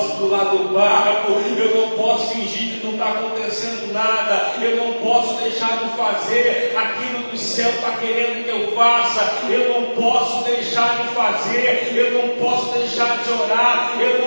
pular do barco, eu não posso fingir que não está acontecendo nada, eu não posso deixar de fazer aquilo que o céu está querendo que eu faça, eu não posso deixar de fazer, eu não posso deixar de orar, eu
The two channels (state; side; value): inverted; both; correlation -1.00